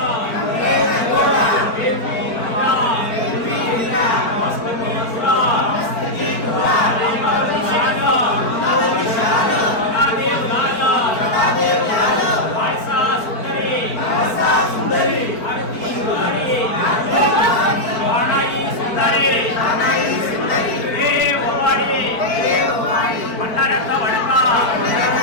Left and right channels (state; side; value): late; right; 4.5 ms